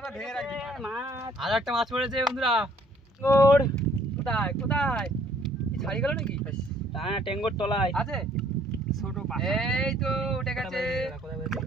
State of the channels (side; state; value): both; normal; correlation 0.61